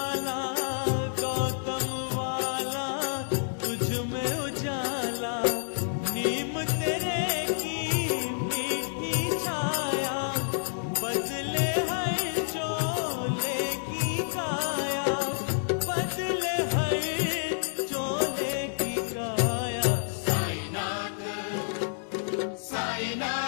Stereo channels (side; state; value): right; silent; digital silence